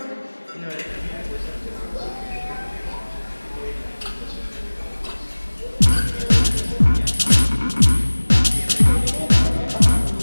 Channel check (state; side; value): inverted; both; correlation -1.00